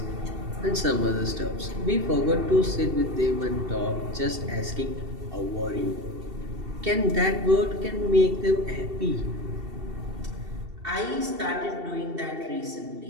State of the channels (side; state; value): left; late; 2.7 ms